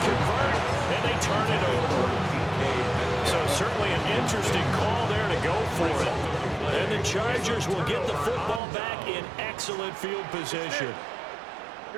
and they turn it over. So certainly an interesting call there to go for it. And the Chargers will get the football back in excellent field position.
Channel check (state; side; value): drops out; left; at 8.6 s